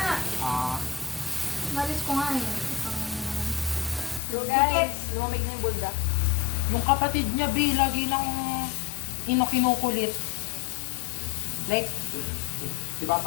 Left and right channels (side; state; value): right; drops out; at 4.2 s